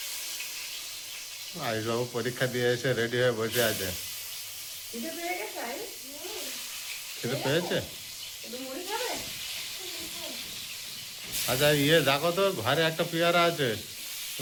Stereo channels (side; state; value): both; identical; correlation 1.00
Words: আইসবাবু পরীক্ষা দিয়ে এসে রেডি হয়ে বসে আছে। এটা পেয়ে গেছে, খেতে পেয়েছে? একটু মুড়ি খাবে? আচ্ছা দেখো তো, ঘরে একটা পেয়ারা আছে, তো